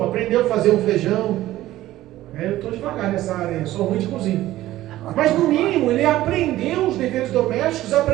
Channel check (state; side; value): quieter; left; 15.2 dB